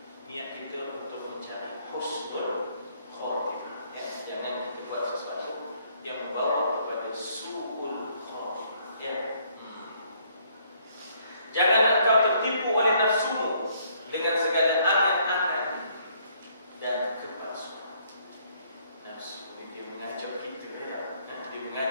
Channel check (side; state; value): both; inverted; correlation -0.66